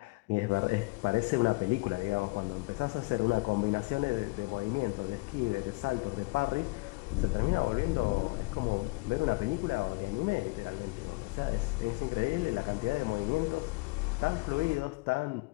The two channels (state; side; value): quieter; right; 25.3 dB